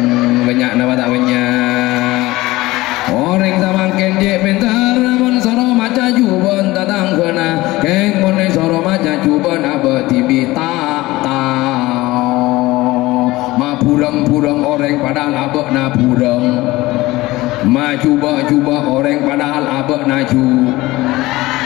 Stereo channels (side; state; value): right; quieter; 19.1 dB